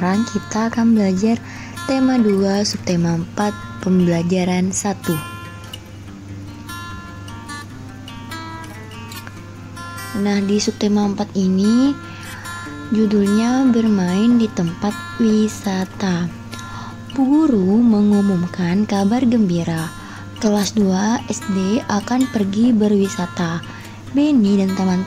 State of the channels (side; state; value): both; identical; correlation 1.00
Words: kita akan belajar tema 2 subtema 4 pembelajaran 1. Nah, di subtema 4 ini judulnya bermain di tempat wisata. Bu guru mengumumkan kabar gembira. Kelas 2 SD akan pergi berwisata. Benny dan